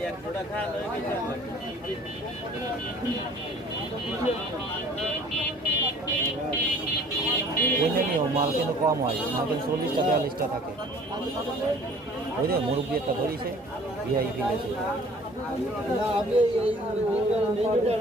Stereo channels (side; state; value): both; normal; correlation 0.51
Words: ওইটা নিও, মাল কিন্তু কম হয়, মাল কিন্তু 40টা 42টা থাকে। ওই যে মুরব্বী একটা ধরিছে ভিআইপি লেছে।